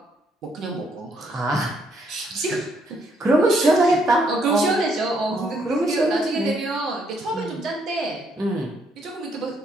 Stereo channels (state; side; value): normal; both; correlation 0.72